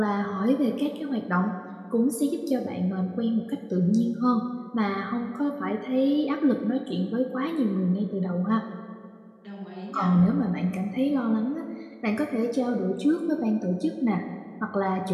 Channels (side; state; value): both; identical; correlation 1.00